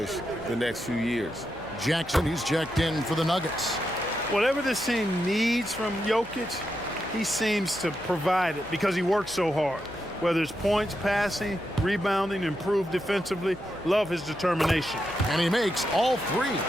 the next few years. Jackson, he's checked in for the Nuggets. Whatever this team needs from Jokic, he seems to provide it because he works so hard. Whether it's points, passing, rebounding, improved defensively, love his determination. And he makes all 3.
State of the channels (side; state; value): left; noise; hum, 22 dB below the sound